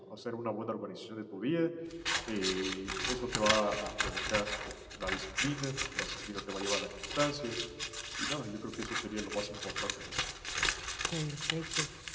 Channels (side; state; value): both; identical; correlation 1.00